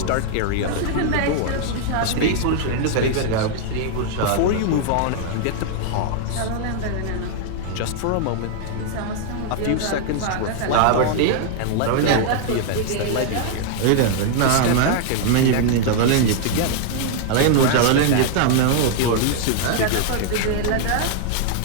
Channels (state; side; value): different; both; correlation 0.00